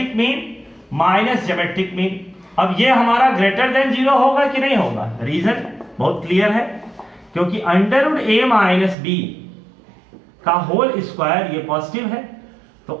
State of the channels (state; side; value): drops out; left; at 9.0 s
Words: mean minus geometric mean, अब ये हमारा ग्रेटर देन 0 होगा कि नहीं होगा, रीजन बहुत क्लियर है, क्योंकि under root a minus b का होल स्क्वायर ये पॉजिटिव है, तो